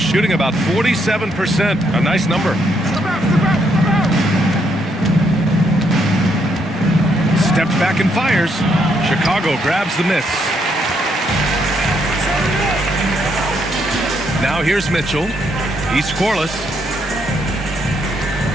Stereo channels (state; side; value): normal; both; correlation 0.74